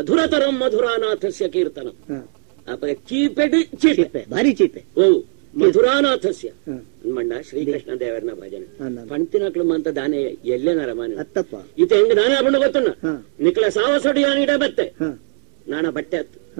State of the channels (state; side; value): silent; left; 66 dB below the other